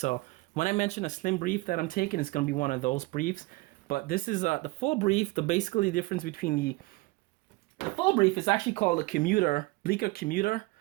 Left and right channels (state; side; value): quieter; left; 22.4 dB